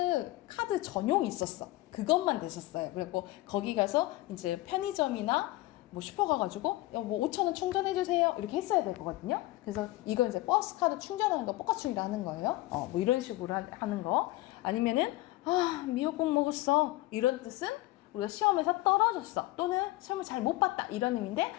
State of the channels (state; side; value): quieter; right; 18.5 dB